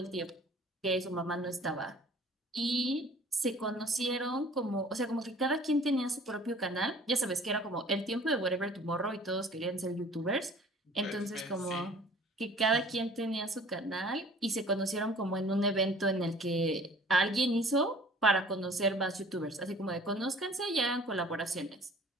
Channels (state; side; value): normal; both; correlation 0.50